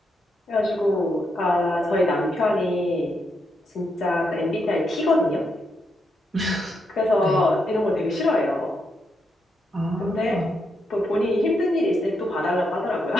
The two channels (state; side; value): normal; both; correlation 0.80